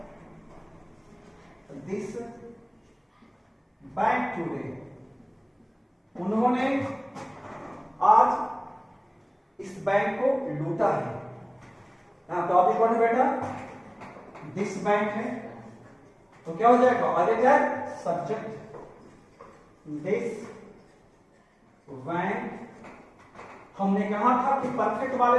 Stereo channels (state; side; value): identical; both; correlation 1.00